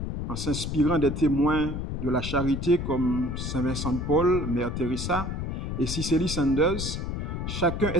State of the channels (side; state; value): left; noise; rumble, 4 dB below the sound